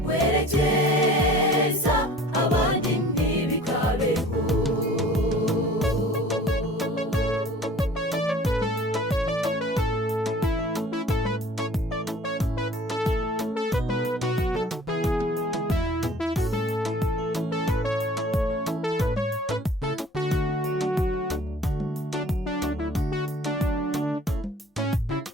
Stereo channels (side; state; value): both; normal; correlation 0.48